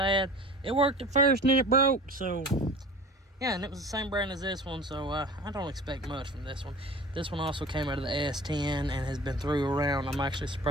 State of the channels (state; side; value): normal; both; correlation 0.40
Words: It worked at first and then it broke, so yeah, and it was the same brand as this one, so I don't expect much from this one. This one also came out of the S10 and has been through around. I'm actually